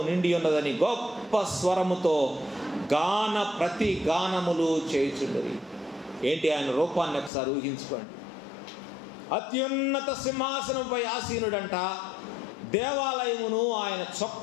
నిండి ఉన్నదని గొప్ప స్వరముతో ప్రతి గానములు చేయుచుండరి. ఏంటి ఆయన రూపాన్ని ఒకసారి ఊహించుకోండి. అత్యున్నత సింహాసనంపై ఆసీనుడంట. దేవాలయమును ఆయన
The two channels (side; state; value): right; drops out; at 7.3 s